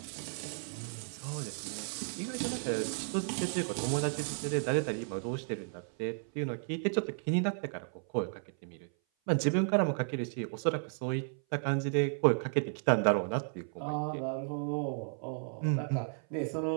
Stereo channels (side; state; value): left; silent; 55 dB below the other